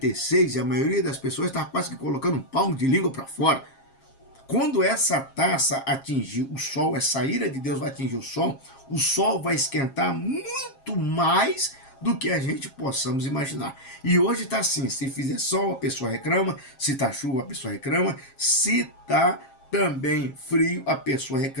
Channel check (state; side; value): late; right; 7.4 ms